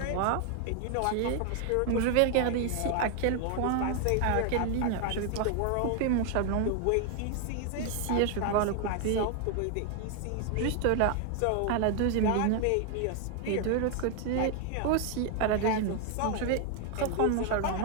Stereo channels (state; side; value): different; both; correlation 0.00